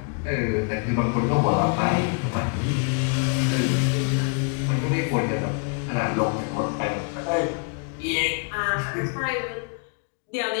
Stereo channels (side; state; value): right; quieter; 37.7 dB